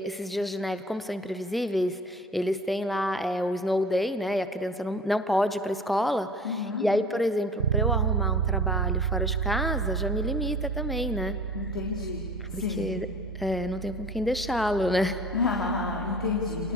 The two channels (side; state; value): both; normal; correlation 0.43